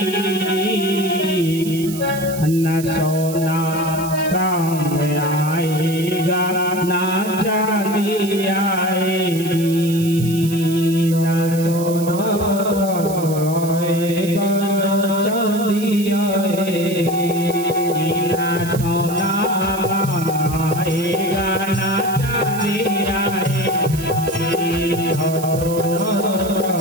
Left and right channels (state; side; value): noise; right; hiss, 12 dB below the sound